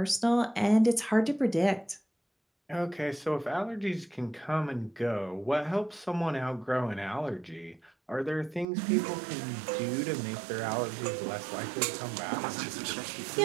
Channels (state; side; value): drops out; left; at 8.7 s